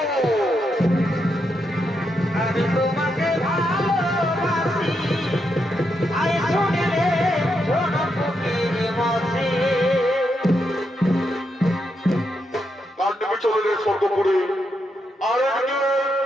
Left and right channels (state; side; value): normal; both; correlation 0.82